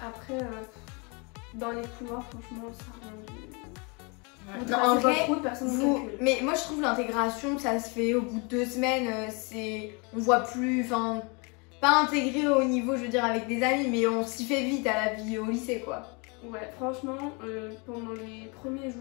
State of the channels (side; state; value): right; quieter; 31.4 dB